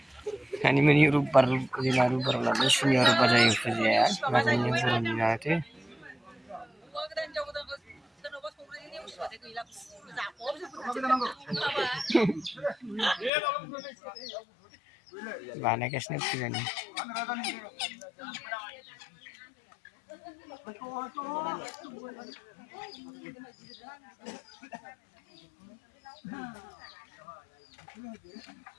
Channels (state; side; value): drops out; right; at 13.3 s